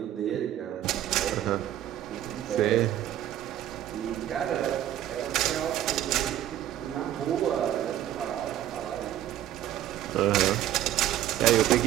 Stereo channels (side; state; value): left; quieter; 12.1 dB